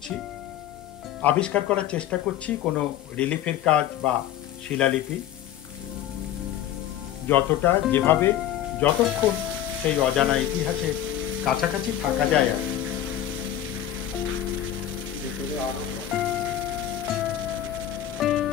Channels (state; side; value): quieter; right; 11.5 dB